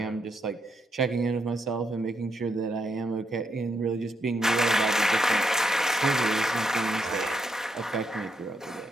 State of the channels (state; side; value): normal; both; correlation 0.79